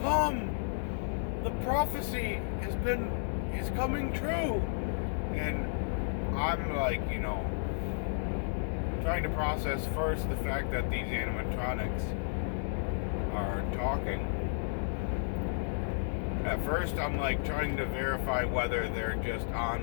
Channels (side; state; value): right; silent; digital silence